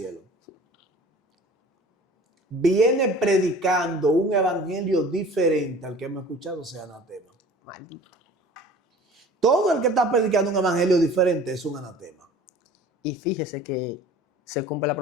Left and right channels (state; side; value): normal; both; correlation 0.45